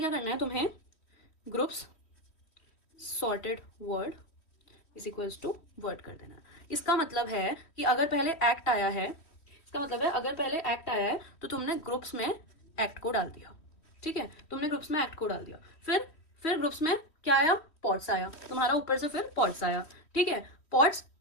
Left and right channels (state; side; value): late; right; 3.2 ms